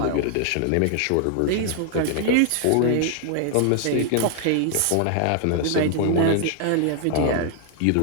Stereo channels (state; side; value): different; both; correlation 0.00